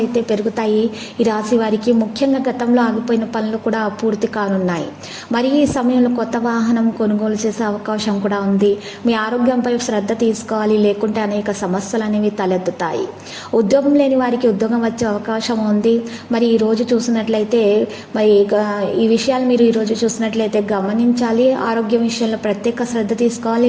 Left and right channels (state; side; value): identical; both; correlation 1.00